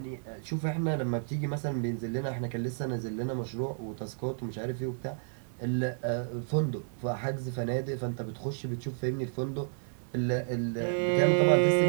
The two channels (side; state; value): left; silent; digital silence